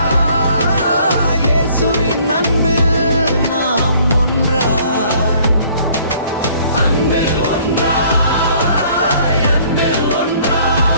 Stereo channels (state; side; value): inverted; both; correlation -0.58